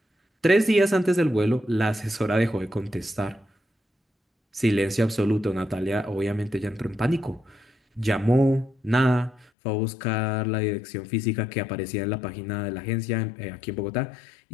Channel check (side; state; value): right; drops out; at 9.5 s